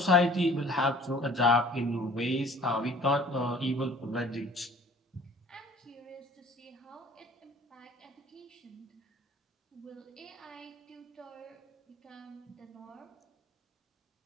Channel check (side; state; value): both; normal; correlation 0.49